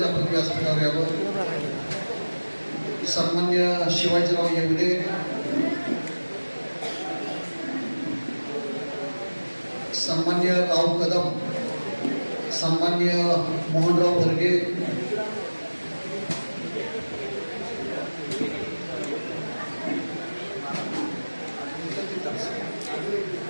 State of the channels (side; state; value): both; inverted; correlation -1.00